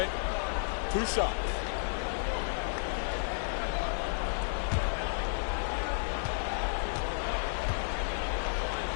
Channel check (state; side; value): silent; right; digital silence